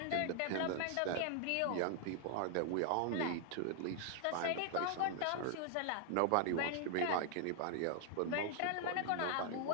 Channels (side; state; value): both; different; correlation 0.00